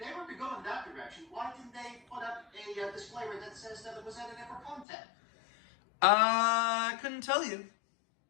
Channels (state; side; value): drops out; right; at 4.9 s